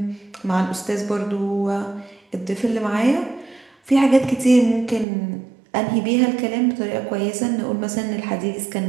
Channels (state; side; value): drops out; left; at 5.1 s